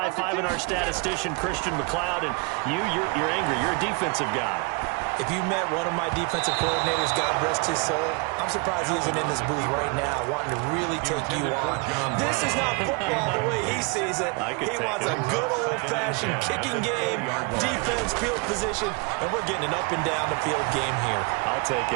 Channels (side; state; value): left; quieter; 31.7 dB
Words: our statistician, Christian McLeod, and you're angry. You're a defensive guy. If you met one of my defensive coordinators, God rest his soul, I'm surprised he isn't in this booth right now wanting to really take you on. This is not football the way he sees it. He wants a good old-fashioned kicking game, defense, field position, and we're getting an up and down the field game here. I'll take